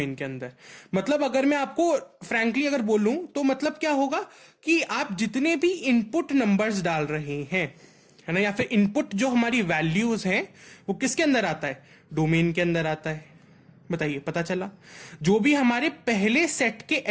के अंदर। मतलब अगर मैं आपको फ्रैंकली अगर बोलूं तो मतलब क्या होगा कि आप जितने भी इनपुट नंबर्स डाल रहे हैं, है ना, या फिर इनपुट जो हमारी वैल्यूज हैं वो किसके अंदर आता है, डोमेन के अंदर आता है। बताइए, पता चला। जो भी हमारे पहले सेट के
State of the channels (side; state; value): both; identical; correlation 1.00